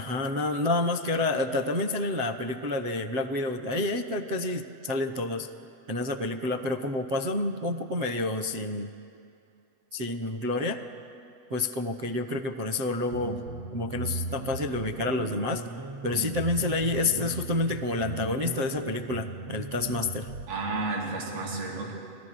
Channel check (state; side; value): late; left; 8.0 ms